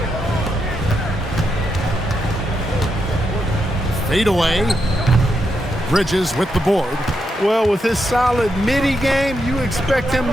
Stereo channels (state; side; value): normal; both; correlation 0.83